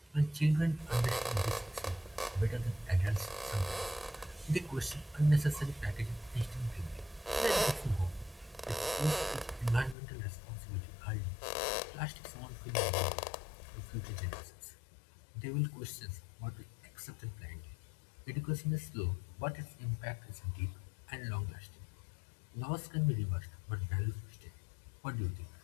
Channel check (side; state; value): right; drops out; at 10.0 s